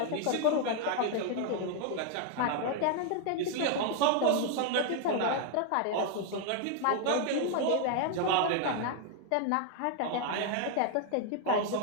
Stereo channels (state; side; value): different; both; correlation 0.00